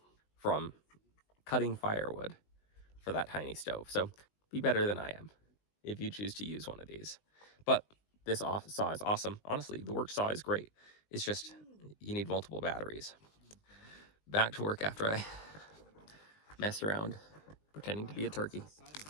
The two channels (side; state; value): right; late; 20 ms